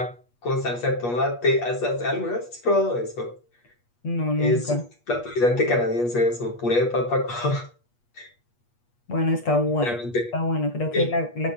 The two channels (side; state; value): right; late; 8.4 ms